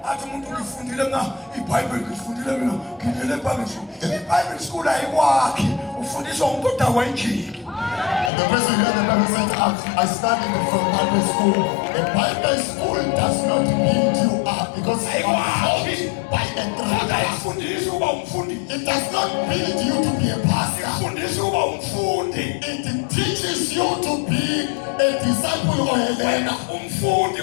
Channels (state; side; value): drops out; right; at 8.3 s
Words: Athi umuntu ngifundile iBhayibheli ngifundile mina. Ngidlule eBhayibheli school. iBhayibheli school ayikwakhi. Ufundiswa umuntu odakwa injini. And the person here, the Bible said, I studied from Bible school. The Bible school does not build you up because you are taught by a Kodwa trainer. ifundisa ukuba umfundi. It does not build you to be a pastor. Ifundisa ukuba umfundi. It teaches you to be a disciple or a learner. Umfundi